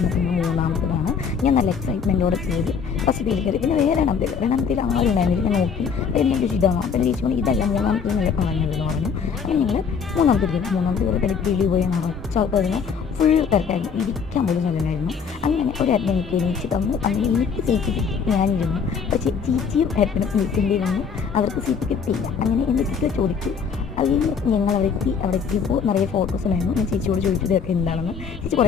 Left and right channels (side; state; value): right; quieter; 6.3 dB